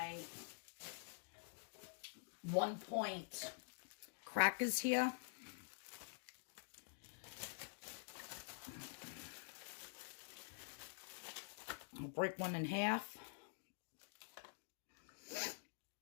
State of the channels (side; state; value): right; silent; digital silence